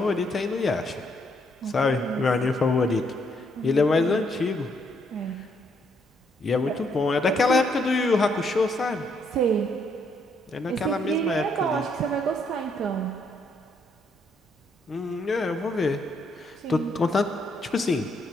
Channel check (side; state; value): both; normal; correlation 0.73